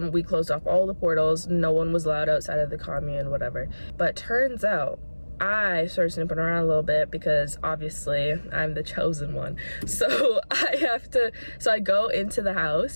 We closed off all the portals. No one was allowed outside of the commune, whatever. But turns out I started snooping around a little bit because obviously I'm the chosen one. So I go into the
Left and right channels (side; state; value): both; inverted; correlation -1.00